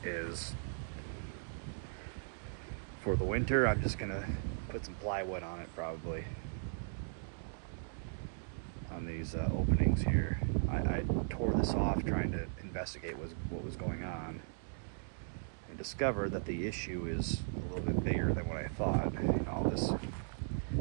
is, for the winter, I'm just gonna put some plywood on it, probably, on these openings here. I tore this off trying to investigate what was going on, and discovered that the issue is a little bit bigger than what I thought. You know, this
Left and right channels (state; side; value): silent; left; digital silence